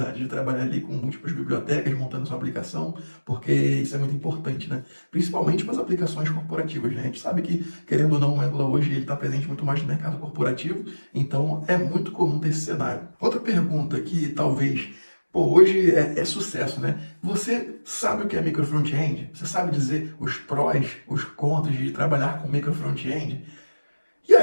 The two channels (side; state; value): both; inverted; correlation -1.00